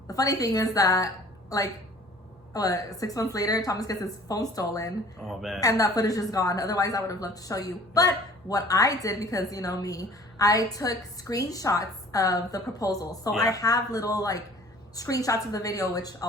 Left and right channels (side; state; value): both; normal; correlation 0.50